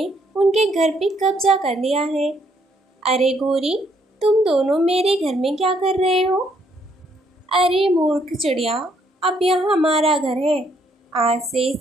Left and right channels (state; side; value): normal; both; correlation 0.70